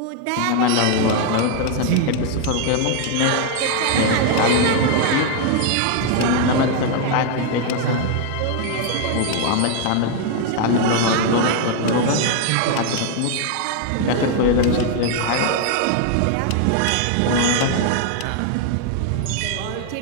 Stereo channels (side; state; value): both; different; correlation 0.00